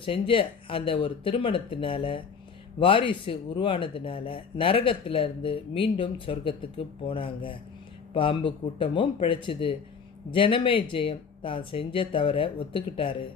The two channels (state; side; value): quieter; right; 6.0 dB